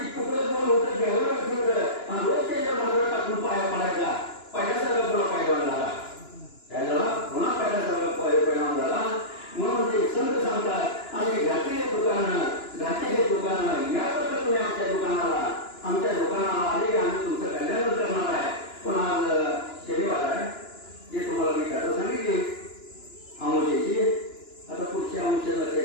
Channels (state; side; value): late; right; 2.9 ms